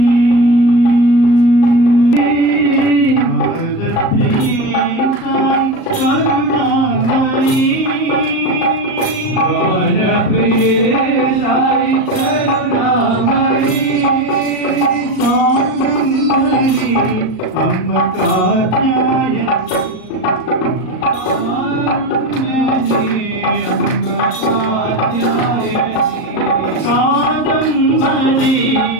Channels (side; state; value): right; late; 38 ms